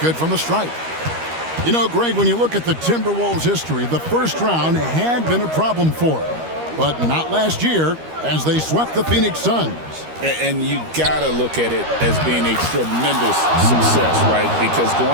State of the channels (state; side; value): late; left; 13 ms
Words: from the stripe. You know, Greg, when you look at the Timberwolves' history, the first round had been a problem for them. But not last year, as they swept the Phoenix Suns. And you got to look at it as being a tremendous success, right? Because